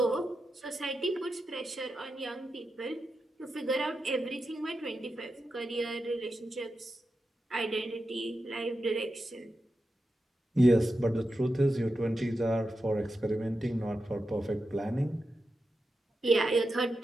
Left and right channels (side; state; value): both; normal; correlation 0.89